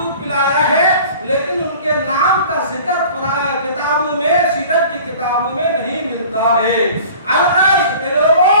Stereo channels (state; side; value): inverted; both; correlation -0.45